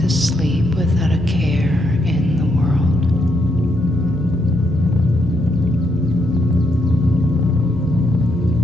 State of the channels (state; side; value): normal; both; correlation 0.77